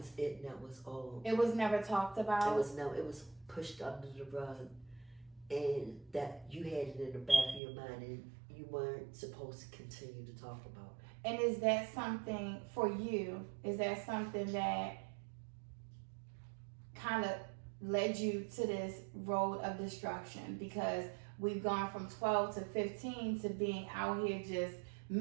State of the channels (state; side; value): drops out; left; at 7.6 s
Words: it, and that was all. It was never talked about? It was pushed under the rug. And that you had it in the back of your mind, and you weren't supposed to continue to talk about it. And is that something for you? Is that something that kind of led you to this road of destruction? Because we've gone from 12 to 15 to being out here just